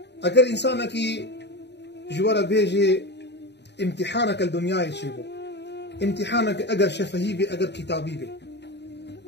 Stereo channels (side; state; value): right; late; 0.50 ms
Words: اگر انسانك جوارا بيجي امتحانك الدنيا يشيبو امتحانك اگر شفهي بي اگر كتابي بي